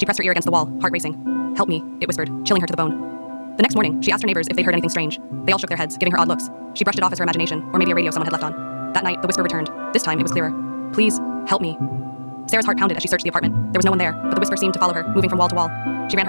pressed her ear against the wall, heart racing. "Help me," it whispered, chilling her to the bone. The next morning, she asked her neighbors if they'd heard anything strange. They all shook their heads, giving her odd looks. She brushed it off as her imagination, or maybe a radio someone had left on. That night, the whisper returned. This time, it was clearer. "Please, help me." Sarah's heart pounded as she searched the apartment. There was no one there, but the whisper seemed to follow her, moving from wall to wall. She ran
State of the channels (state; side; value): inverted; both; correlation -1.00